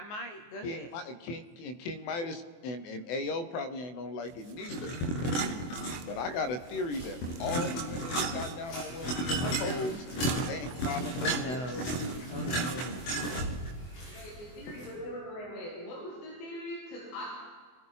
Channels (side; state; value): right; late; 24 ms